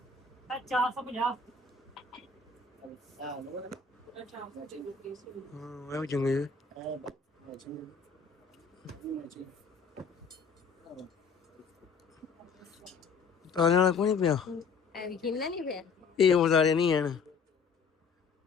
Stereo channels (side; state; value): right; quieter; 5.2 dB